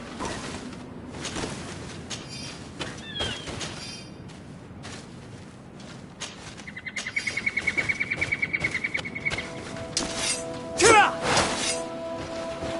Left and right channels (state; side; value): identical; both; correlation 1.00